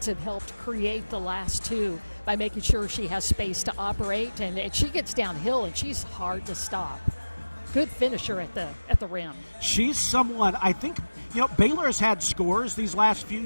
have helped create the last two by making sure she has space to operate, and she gets downhill, and she's hard to stop. Good finisher at the rim. She's someone, I think, you know, Baylor has had scores these last few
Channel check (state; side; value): inverted; both; correlation -1.00